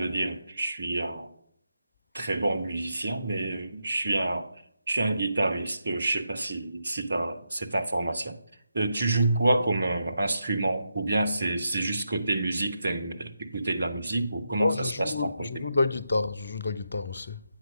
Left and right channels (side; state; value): both; inverted; correlation -0.84